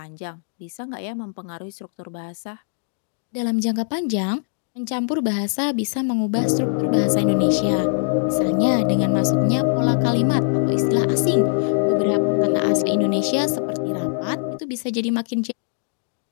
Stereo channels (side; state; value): right; silent; digital silence